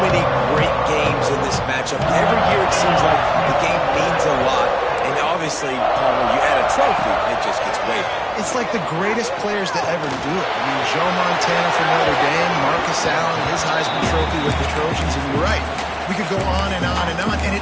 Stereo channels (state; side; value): identical; both; correlation 1.00